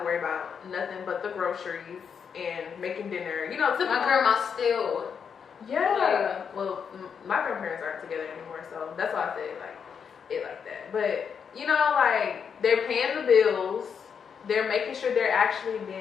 worry about nothing but the groceries and making dinner, you know, My grandma still. Yeah. Well, my grandparents aren't together anymore, so that's why I say like it like that. But you know, like they're paying the bills, they're making sure they're actually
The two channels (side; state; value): right; quieter; 6.8 dB